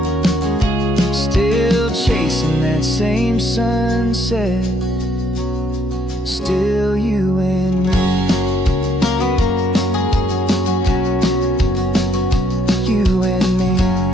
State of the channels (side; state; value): both; normal; correlation 0.67